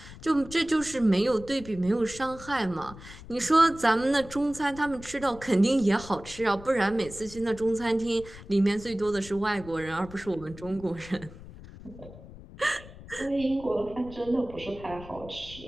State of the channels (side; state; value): left; noise; rumble, 16 dB below the sound